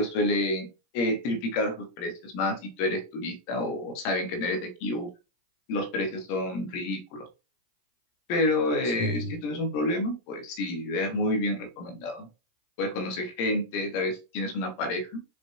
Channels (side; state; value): right; late; 17 ms